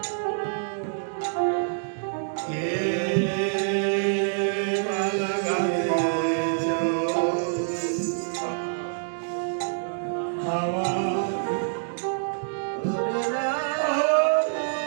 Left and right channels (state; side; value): silent; left; digital silence